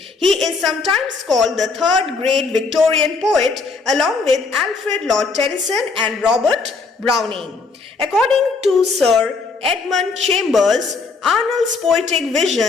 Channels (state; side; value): quieter; right; 4.3 dB